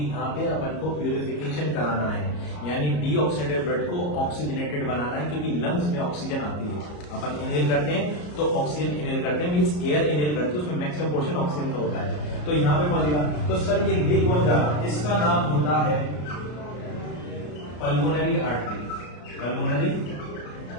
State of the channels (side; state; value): right; late; 34 ms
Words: यहाँ पे अपन को प्यूरिफिकेशन कराना है, यानी डीऑक्सीडेटेड ब्लड को ऑक्सीजनेटेड बनाना है, क्योंकि लंग्स में ऑक्सीजन आती है। अपन इनहेल करते हैं तो ऑक्सीजन इनहेल करते हैं, मींस एयर इनहेल करते हैं, उसमें मैक्सिमम पोर्शन ऑक्सीजन का होता है। तो यहाँ पे पहुंचेगा तो सर ये ले कौन जा रहा है? इसका नाम होता है पल्मोनरी आर्टरी। पल्मोनरी